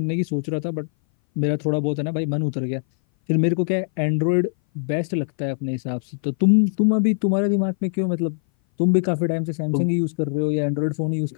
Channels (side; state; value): right; silent; 59 dB below the other